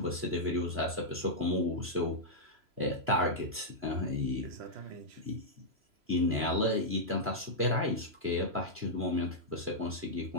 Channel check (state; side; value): late; left; 3.0 ms